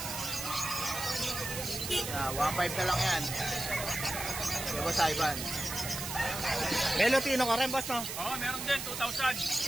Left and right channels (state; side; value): noise; right; hiss, 5 dB below the sound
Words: 1.5 na lang yan. Kay Boss Ivan. May Lutino ka rin, boss, no? Oo, meron din,